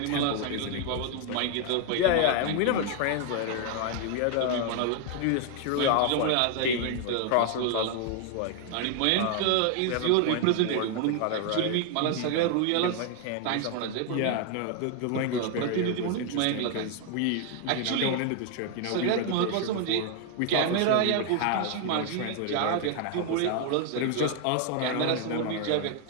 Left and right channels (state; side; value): different; both; correlation 0.00